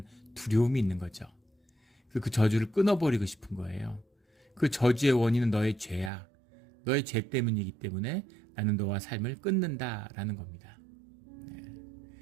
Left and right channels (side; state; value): left; drops out; at 6.1 s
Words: 두려움이 있는 거죠. 그 저주를 끊어버리고 싶은 거예요. 그 저주의 원인은 너의 죄야. 너의 죄 때문이기 때문에 나는 너와 삶을 끊는다라는 겁니다.